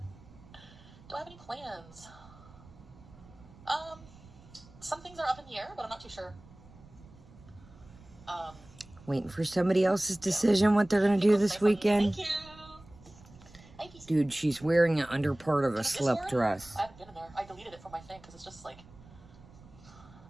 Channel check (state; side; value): noise; right; rumble, 22 dB below the sound